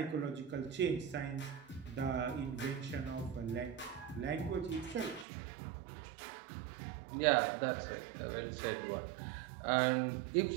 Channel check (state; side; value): drops out; left; at 5.2 s